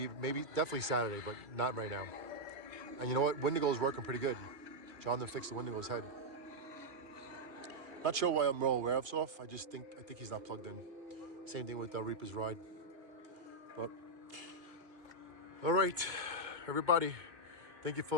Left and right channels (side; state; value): left; late; 2.2 ms